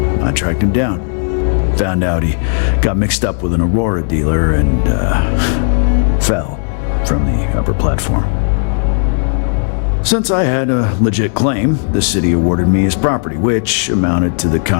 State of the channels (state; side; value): silent; right; digital silence